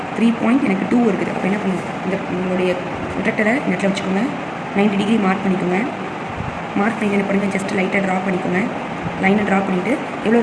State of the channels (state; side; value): identical; both; correlation 1.00